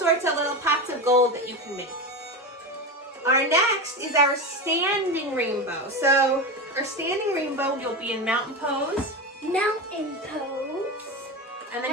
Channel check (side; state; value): both; normal; correlation 0.21